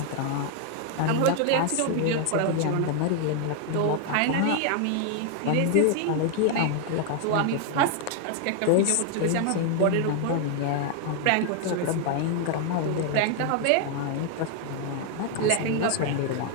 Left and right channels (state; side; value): different; both; correlation 0.00